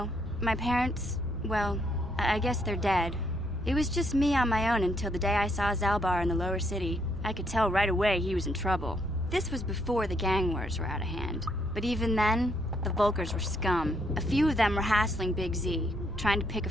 My parents, well, I guess they're dead. It was just me on my own until the day I saw Zaalbar in the lower city. I could tell right away he was in trouble. This was before the gang wars were out of hand. But even then, the Volkers were scum. A few of them were hassling Big Z, trying to pick a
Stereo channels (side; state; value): both; normal; correlation 0.73